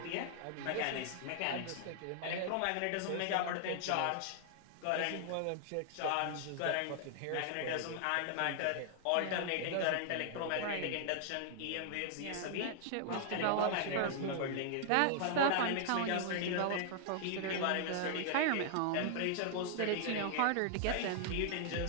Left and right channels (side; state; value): both; different; correlation 0.00